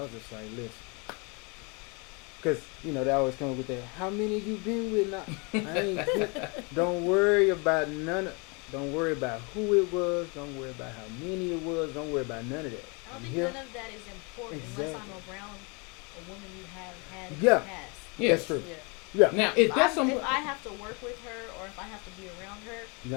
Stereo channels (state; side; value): quieter; right; 31.6 dB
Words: was just like, listen. Because, they always come with that, how many you been with now? Don't worry about don't worry about who it was. Don't worry about how many it was. Don't worry about none of that. I don't think none of that is important unless I'm around a woman you have had in the past. Yeah, that's true. Yeah. Now, if I have to work with her or if I have to be around her,